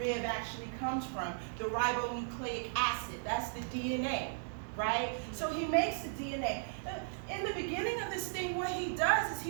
actually comes from. The ribonucleic acid. That's the DNA, right? So he makes the DNA. In the beginning of this thing, what he does is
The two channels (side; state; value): left; silent; digital silence